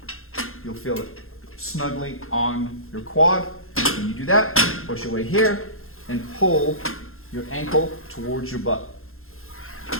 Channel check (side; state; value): right; late; 0.61 ms